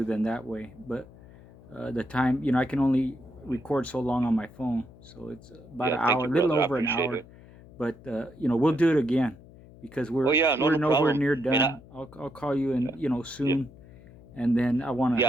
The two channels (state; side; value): noise; left; hum, 21 dB below the sound